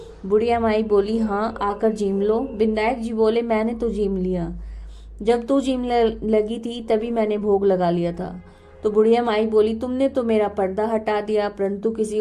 बुढ़िया माई बोली, हाँ, आकर जीम लो। बिंदायक जी बोले, मैंने तो जीम लिया, जब तू जीम लगी थी तभी मैंने भोग लगा लिया था। तो बुढ़िया माई बोली, तुमने तो मेरा पर्दा हटा दिया, परंतु किसी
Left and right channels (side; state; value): both; identical; correlation 1.00